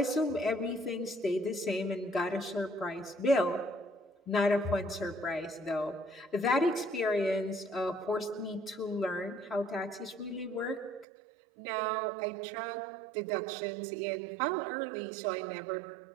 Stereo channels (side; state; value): left; drops out; at 11.1 s